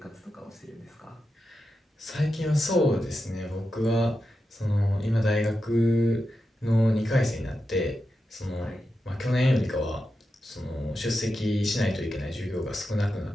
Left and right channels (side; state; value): both; normal; correlation 0.89